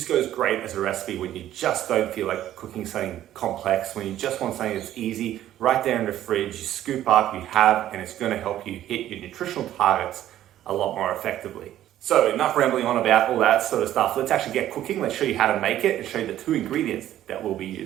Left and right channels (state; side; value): quieter; left; 12.6 dB